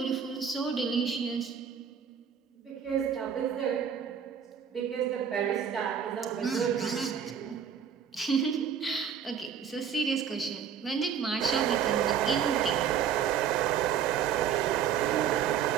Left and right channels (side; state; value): left; quieter; 7.9 dB